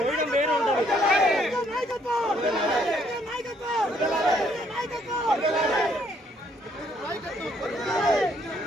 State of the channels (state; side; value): normal; both; correlation 0.67